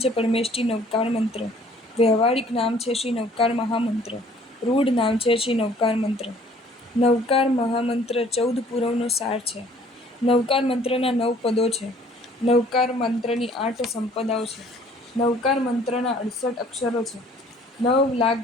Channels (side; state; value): both; normal; correlation 0.56